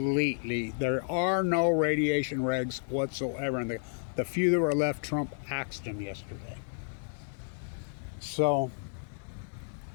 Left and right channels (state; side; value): silent; right; digital silence